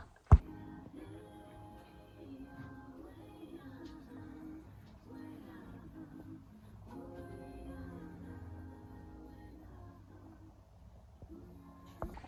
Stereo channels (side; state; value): both; identical; correlation 1.00